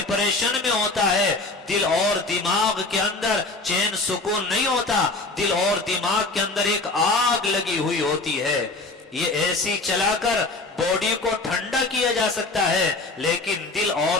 میں ہوتا ہے۔ دل اور دماغ کے اندر چین سکون نہیں ہوتا، دل اور دماغ کے اندر ایک آگ لگی ہوئی ہوتی ہے۔ یہ ایسی چلا کر باڈی کو ٹھنڈا کیا جا سکتا ہے، لیکن دل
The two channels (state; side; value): quieter; right; 3.3 dB